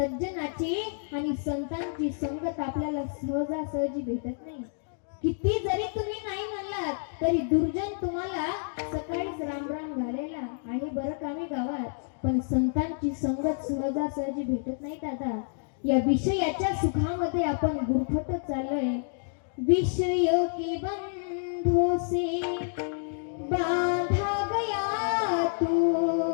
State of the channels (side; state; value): right; silent; digital silence